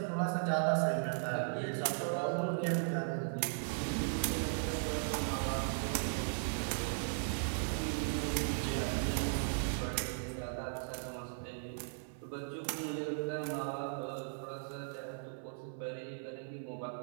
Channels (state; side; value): silent; left; 53 dB below the other